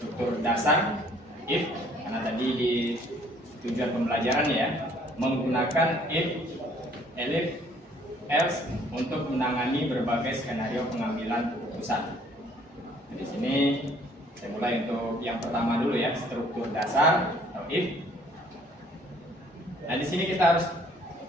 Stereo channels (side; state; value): both; normal; correlation 0.60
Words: dasar if, karena tadi di tujuan pembelajaran ya, menggunakan if, elif, else untuk menangani berbagai skenario pengambilan keputusan. Di sini saya mulai untuk yang pertama dulu ya, struktur dasar atau if. Nah, di sini kita harus